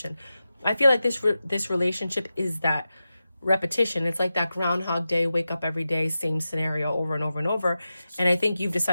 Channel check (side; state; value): both; inverted; correlation -0.92